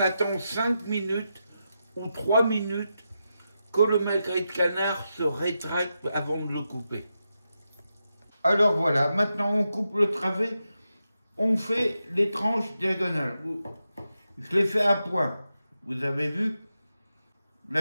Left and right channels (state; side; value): inverted; both; correlation -0.87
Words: 5 minutes ou 3 minutes que le magret de canard se rétracte avant de le couper. Alors voilà, maintenant on coupe le travet, on fait les tranches diagonales. Je les fais à point, vous avez vu